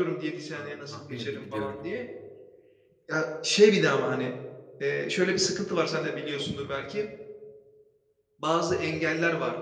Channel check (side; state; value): both; identical; correlation 1.00